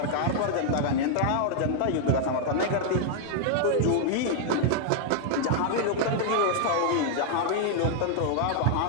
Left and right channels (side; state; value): both; different; correlation 0.00